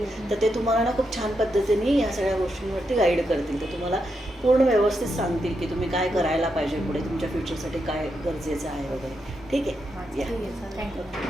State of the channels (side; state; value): both; normal; correlation 0.83